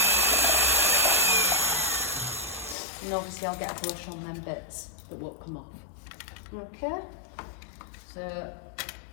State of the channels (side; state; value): right; drops out; at 2.8 s